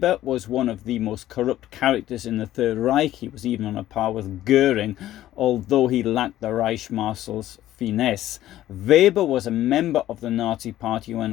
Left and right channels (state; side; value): quieter; right; 13.7 dB